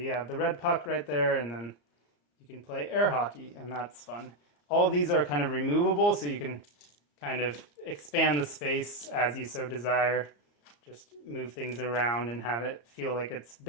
have the red puck right there, and then you can play air hockey, and that's fun. All of these are kind of removable, so you can kind of expand the space as you so desire. Just move things around and have it feel like it's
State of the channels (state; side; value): late; right; 34 ms